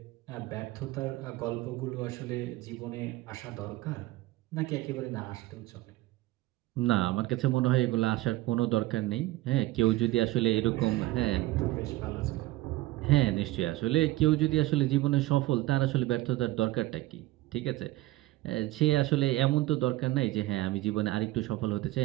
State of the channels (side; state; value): left; quieter; 17.9 dB